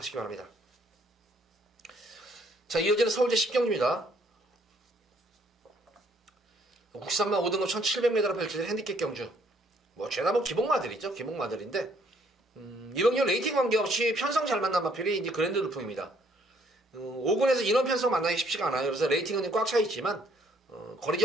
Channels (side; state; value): both; normal; correlation 0.65